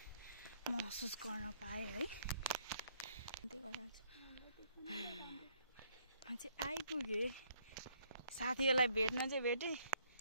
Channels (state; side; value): inverted; both; correlation -0.69